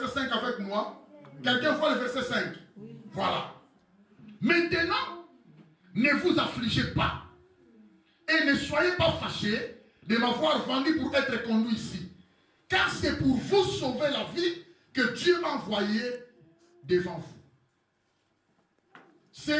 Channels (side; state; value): both; identical; correlation 1.00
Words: 5 avec moi? Quelqu'un voit le verset 5? Voilà. Maintenant, ne vous affligez pas. Et ne soyez pas fâchés de m'avoir vendu pour être conduit ici. Car c'est pour vous sauver la vie que Dieu m'a envoyé devant vous.